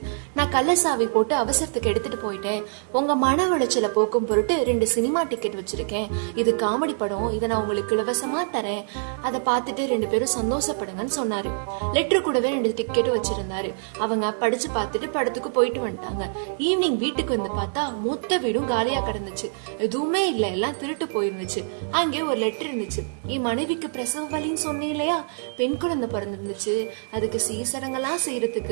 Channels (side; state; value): left; silent; digital silence